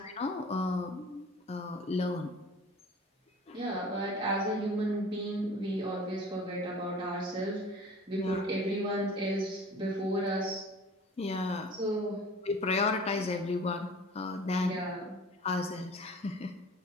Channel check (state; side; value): normal; both; correlation 0.44